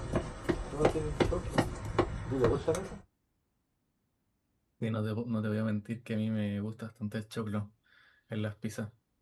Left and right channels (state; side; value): identical; both; correlation 1.00